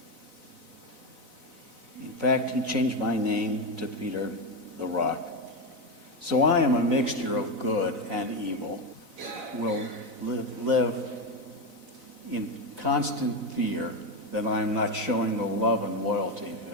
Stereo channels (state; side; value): late; left; 4.0 ms